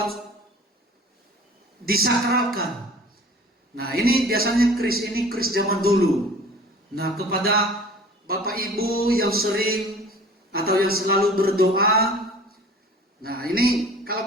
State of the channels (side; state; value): both; normal; correlation 0.46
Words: disakralkan. Nah, ini biasanya keris zaman dulu. Nah, kepada Bapak Ibu yang sering atau yang selalu berdoa, nah ini